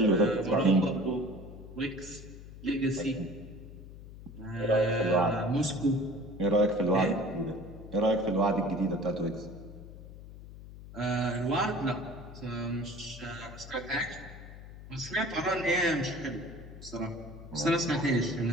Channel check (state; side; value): noise; left; hum, 15 dB below the sound